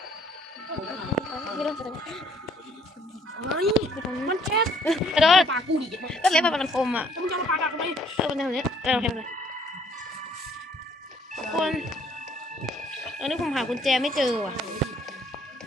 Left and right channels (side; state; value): both; normal; correlation 0.62